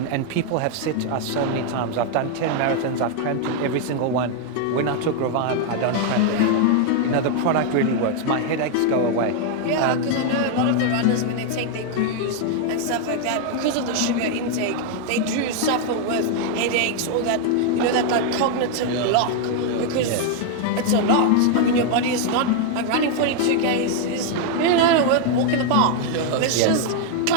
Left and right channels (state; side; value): different; both; correlation 0.00